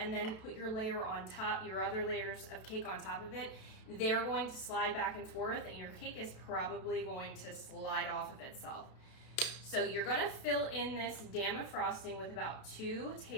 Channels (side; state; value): right; late; 32 ms